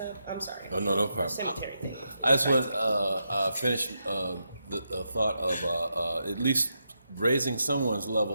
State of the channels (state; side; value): inverted; both; correlation -0.84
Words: I'm sorry. Oh, no problem. Cemetery thing. I just want to finish the thought of at least raising someone's